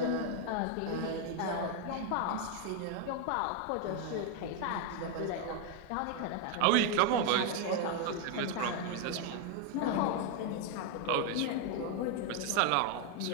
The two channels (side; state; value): both; different; correlation 0.01